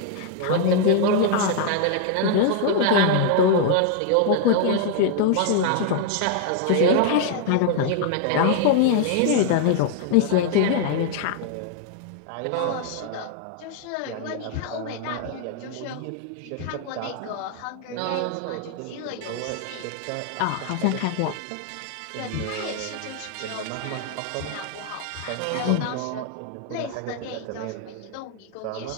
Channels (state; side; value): different; both; correlation 0.00